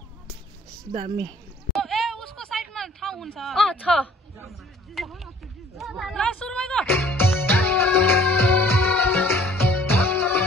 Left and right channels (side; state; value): both; normal; correlation 0.55